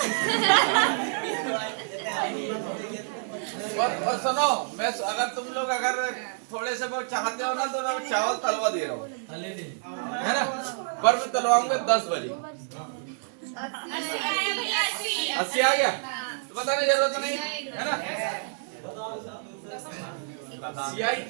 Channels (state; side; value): silent; left; digital silence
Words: और सुनो, मैं अगर तुम लोग अगर थोड़े से बहुत चाहते हो ना तो मैं चावल तलवा दे रहा हूँ, है ना, पर मैं तलवाऊंगा 10 बजे। 80 आ गया तो बताने जरूरत नहीं है ना। सीआई